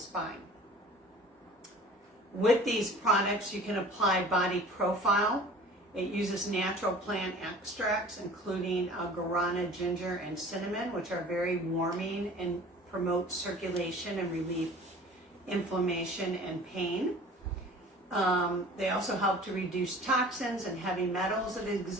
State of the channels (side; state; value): both; normal; correlation 0.45